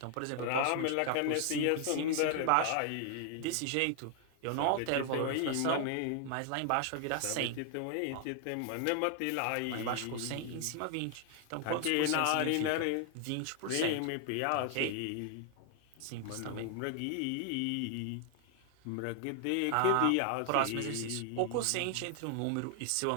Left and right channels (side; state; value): both; different; correlation 0.00